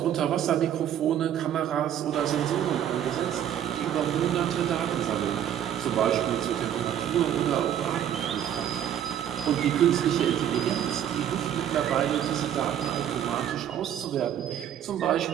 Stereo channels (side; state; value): left; quieter; 10.2 dB